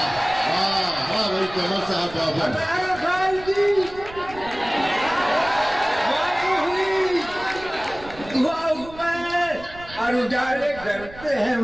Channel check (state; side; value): noise; right; rumble, 18 dB below the sound